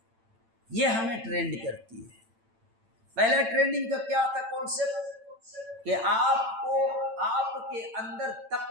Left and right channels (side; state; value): left; late; 8.9 ms